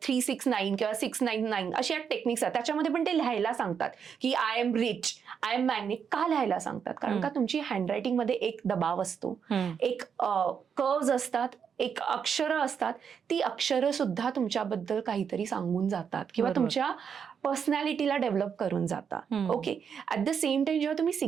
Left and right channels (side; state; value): left; quieter; 7.1 dB